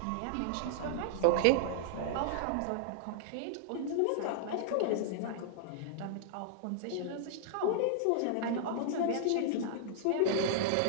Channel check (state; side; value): different; both; correlation -0.01